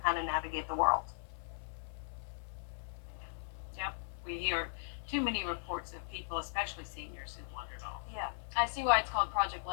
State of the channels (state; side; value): silent; right; digital silence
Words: how to navigate the world. Yep, we hear too many reports of people, especially seniors, who wandered off. Yeah, I see why it's called Project